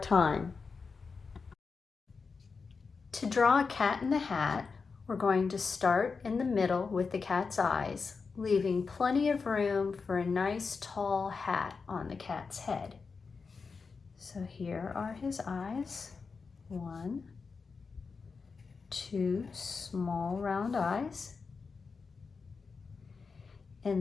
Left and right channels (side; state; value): right; quieter; 4.9 dB